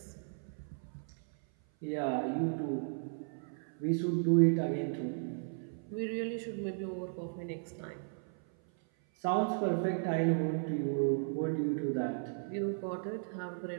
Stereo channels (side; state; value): left; silent; 54 dB below the other